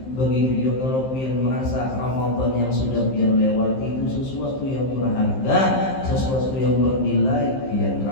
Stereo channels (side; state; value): right; late; 15 ms